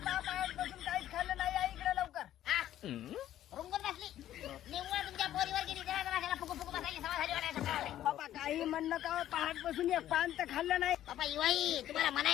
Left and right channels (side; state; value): right; quieter; 12.3 dB